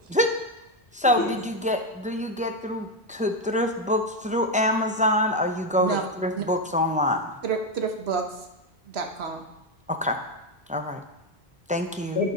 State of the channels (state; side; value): normal; both; correlation 0.07